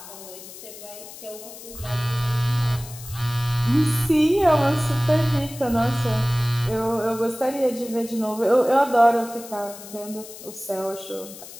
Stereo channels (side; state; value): left; noise; hiss, 15 dB below the sound